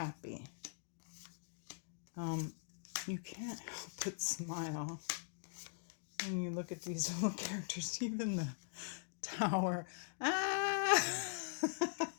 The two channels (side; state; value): right; silent; digital silence